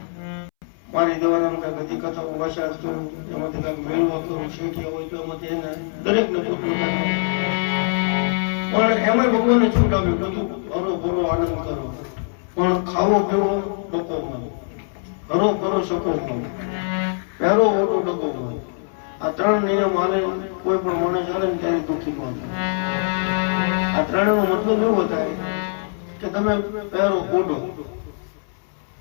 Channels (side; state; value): right; silent; 64 dB below the other